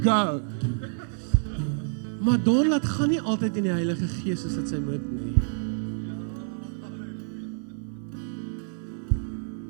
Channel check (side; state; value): left; silent; 60 dB below the other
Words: go. Maar Don laat gaan nie altyd in die Heilige Gees soos dit sy moet nie.